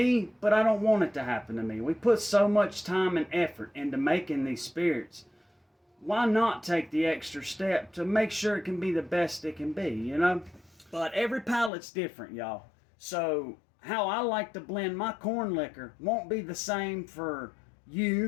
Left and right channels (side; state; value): right; drops out; at 11.7 s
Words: but I don't want it to happen to me. We put so much time and effort into making these spirits. Why not take the extra step to make sure it can be the best it can be, you know? But every palate's different, y'all. So how I like to blend my corn liquor won't be the same for